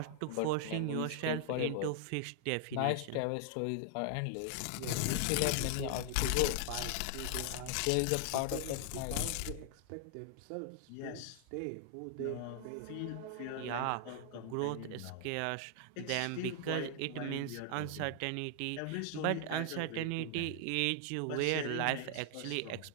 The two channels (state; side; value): different; both; correlation 0.00